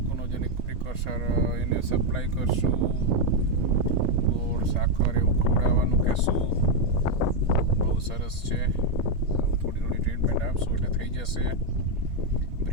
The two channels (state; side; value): late; left; 3.3 ms